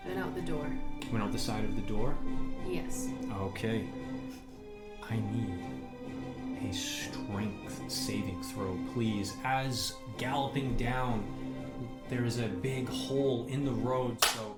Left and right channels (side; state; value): both; identical; correlation 1.00